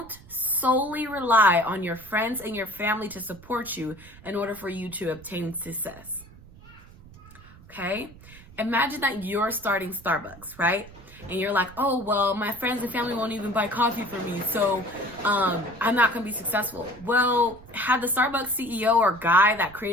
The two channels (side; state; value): right; noise; rumble, 21 dB below the sound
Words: solely rely on your friends and your family to support you in order for you to obtain success. Okay? Imagine that you're starting Starbucks, right? And you're like, oh, well, my friends and family won't even buy coffee for me, so I'm not going to be successful. Well, had the Starbucks CEO or guy that